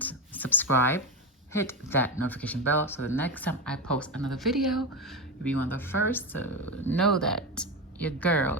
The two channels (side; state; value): both; normal; correlation 0.15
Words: subscribe, hit that notification bell so the next time I post another video, you'll be one of the first to know that your girl